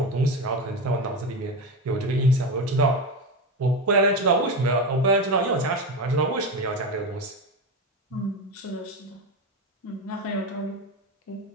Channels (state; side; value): normal; both; correlation 0.18